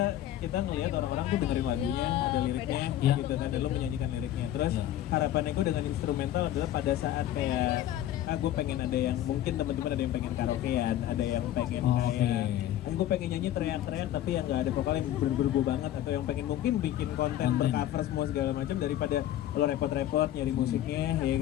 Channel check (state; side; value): quieter; right; 12.6 dB